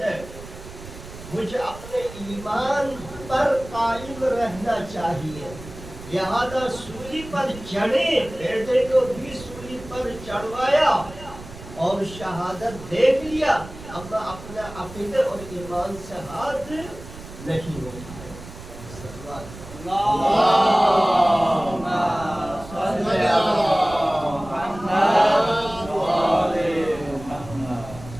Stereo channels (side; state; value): right; noise; rumble, 15 dB below the sound